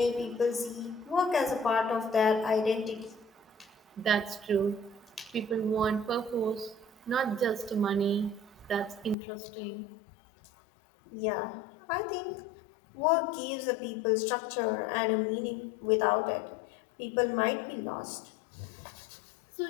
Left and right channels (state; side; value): drops out; right; at 9.2 s